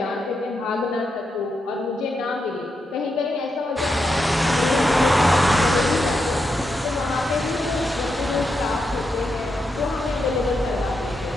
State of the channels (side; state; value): both; normal; correlation 0.84